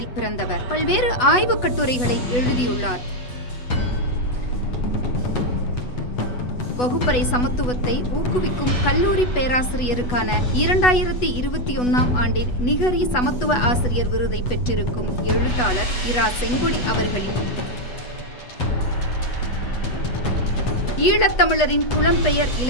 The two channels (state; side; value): late; right; 8.1 ms